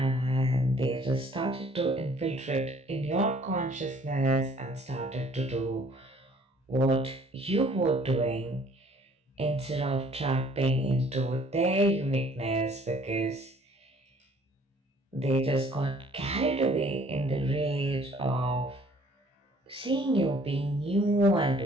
they just started to infiltrate in your consciousness and started to do what you were doing instead of tapping into their uniqueness because they just got carried away in the rage of seeing you being new and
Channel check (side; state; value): both; normal; correlation 0.57